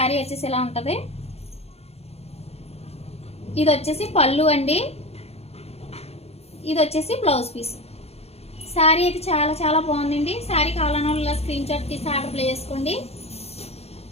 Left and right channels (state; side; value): late; right; 0.30 ms